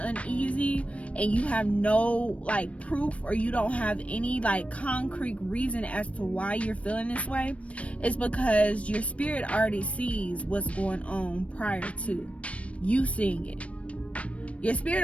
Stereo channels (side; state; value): right; late; 0.063 ms